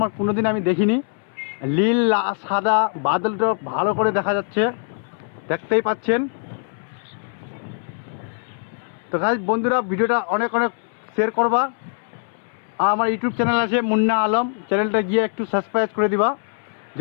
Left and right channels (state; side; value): silent; right; 63 dB below the other